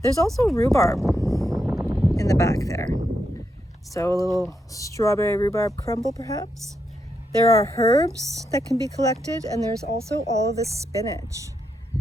There's also rhubarb in the back there. So a little strawberry rhubarb crumble perhaps. There are herbs that can be collected, and there's also all of this spinach.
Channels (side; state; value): both; normal; correlation 0.82